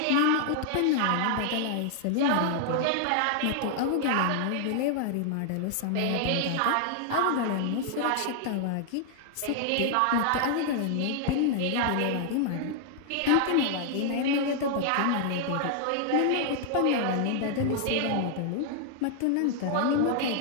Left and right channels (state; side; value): different; both; correlation 0.00